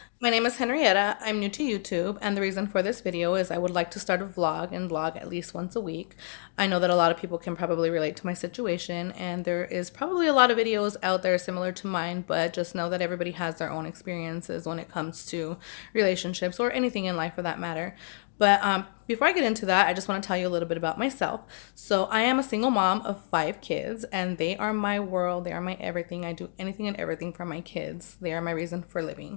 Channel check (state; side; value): silent; right; digital silence